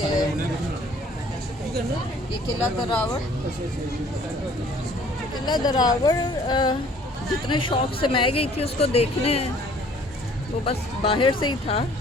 ये किला दरावड़, किला दरावड़ जितने शौक से मैं गई थी उसको देखने, वो बस बाहर से ही था,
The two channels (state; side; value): normal; both; correlation 0.55